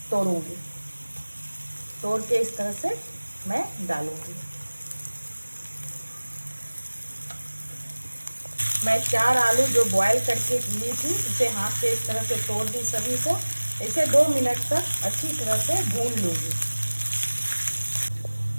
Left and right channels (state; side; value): inverted; both; correlation -1.00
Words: तोड़ूंगी, तोड़ के इस तरह से मैं डालूंगी। मैं 4 आलू जो बॉईल करके ली थी इसे हाथ से इस तरह से तोड़ दी सभी को। इसे 2 मिनट तक अच्छी तरह से भून लूँगी।